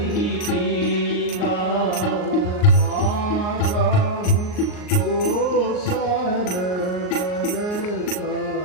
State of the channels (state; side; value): late; right; 38 ms